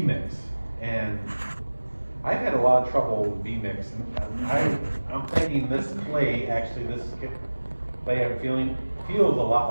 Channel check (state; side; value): inverted; both; correlation -1.00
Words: and I've had a lot of trouble with B-mix, and I'm thinking this clay, actually this clay I'm feeling, feels a lot